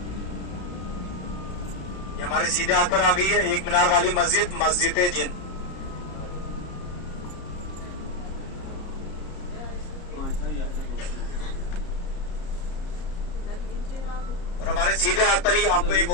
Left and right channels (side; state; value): right; late; 33 ms